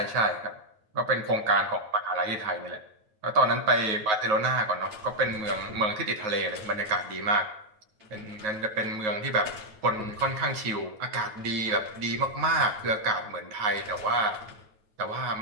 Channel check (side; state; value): left; late; 9.4 ms